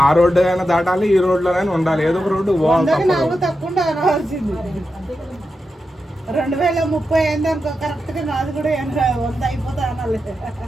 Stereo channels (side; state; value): both; normal; correlation 0.89